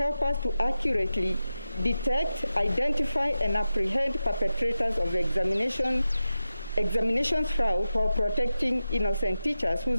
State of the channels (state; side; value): inverted; both; correlation -0.92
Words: us to accurately detect, identify, and apprehend perpetrators of examinations fraud while protecting innocent teachers